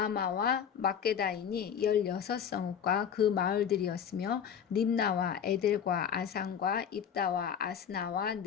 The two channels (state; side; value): quieter; right; 7.9 dB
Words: 막게다이니 16성읍과 그 마을들이었으며 림나와 에델과 아산과 입다와 아스나와